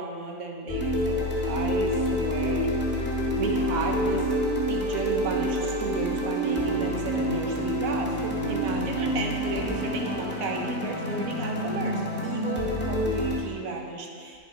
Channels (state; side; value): normal; both; correlation 0.14